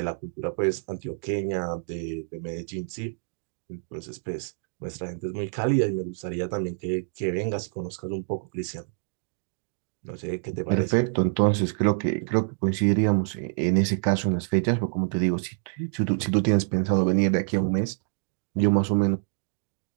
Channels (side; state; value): left; silent; digital silence